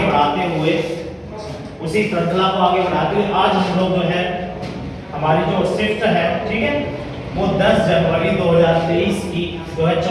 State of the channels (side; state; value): both; identical; correlation 1.00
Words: हुए आज हम लोग जो है हमारी जो शिफ्ट है, ठीक है, वो 10 जनवरी 2023 की जो है